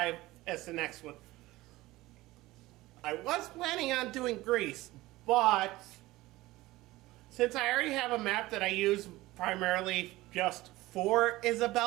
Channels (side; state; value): left; quieter; 18.5 dB